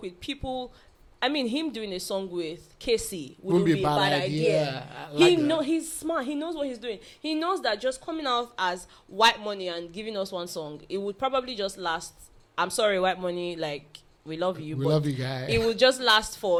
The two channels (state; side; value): identical; both; correlation 1.00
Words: with people. I mean, him doing a song with Casey wouldn't be a bad idea. He's smart. He knows what he's doing. He knows that just coming out as Whitemoney and giving us one song, it would probably just last. I'm sorry, Whitemoney, like, we love you. We love you, guys. It will just last